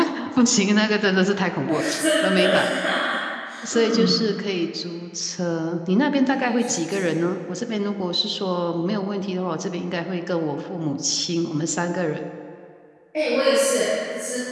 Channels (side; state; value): both; identical; correlation 1.00